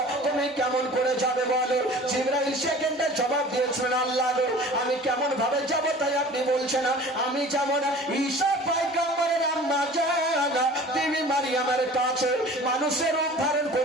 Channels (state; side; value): normal; both; correlation 0.43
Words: তুমি কেমন করে যাবে বলো? জিবরাইল সেকেন্ডে জবাব দিয়েছেন, আল্লাহ গো আমি কেমন ভাবে যাব তাই আপনি বলছেন? আমি যেমন ঈসা পয়গম্বরের আম্মা জানা বিবি মারিয়ামের কাছে মানুষের রূপ ধারণ